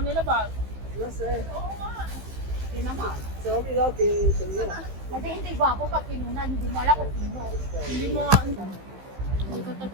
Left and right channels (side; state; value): left; late; 15 ms